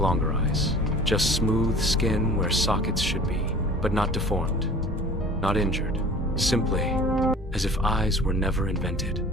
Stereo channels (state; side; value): normal; both; correlation 0.45